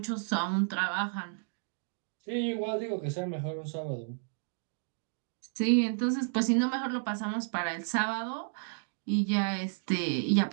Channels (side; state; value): left; silent; digital silence